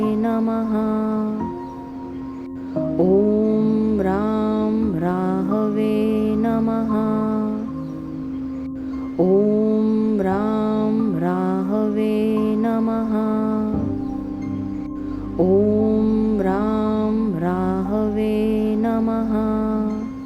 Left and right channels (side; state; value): both; identical; correlation 1.00